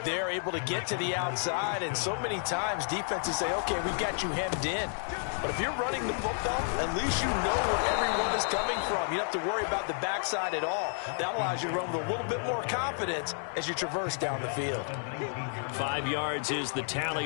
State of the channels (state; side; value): silent; right; 57 dB below the other